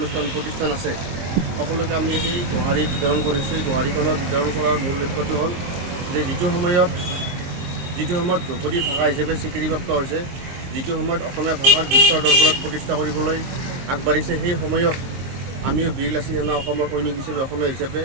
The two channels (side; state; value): left; late; 23 ms